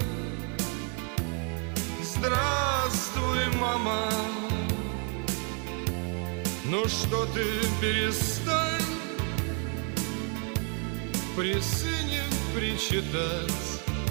Здравствуй, мама. Ну что ты, перестань при сыне причитать.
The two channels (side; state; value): left; quieter; 39.7 dB